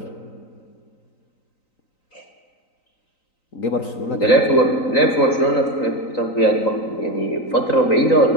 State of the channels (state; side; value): late; right; 3.9 ms